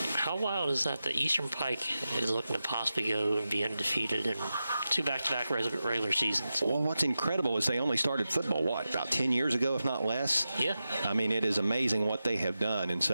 How wild is that? The Eastern Pike is looking to possibly go and be undefeated in 2 back-to-back regular seasons. Well, what's incredible is they only started football, about 10 years ago, if not less? Yeah. I mean, it is amazing what they have done in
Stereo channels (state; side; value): inverted; both; correlation -0.92